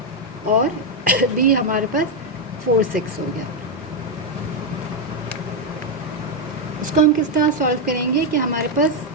और बी हमारे पास 4 6 हो गया। इसको हम किस तरह सॉल्व करेंगे कि हमारे पास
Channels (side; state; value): both; normal; correlation 0.03